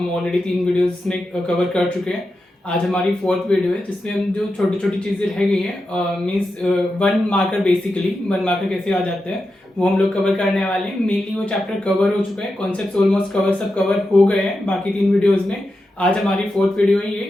ऑलरेडी 3 वीडियोस में कवर कर चुके हैं। आज हमारी 4th वीडियो है जिसमें हम जो छोटी छोटी चीज़ें रह गई हैं मीन्स 1 मार्कर, बेसिकली 1 मार्कर कैसे आ जाते हैं वो हम लोग कवर करने वाले हैं। मेनली वो चैप्टर कवर हो चुका है, कॉन्सेप्ट ऑलमोस्ट सब कवर हो गए हैं बाकी 3 वीडियोज़ में। आज हमारी 4th वीडियो है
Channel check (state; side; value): normal; both; correlation 0.89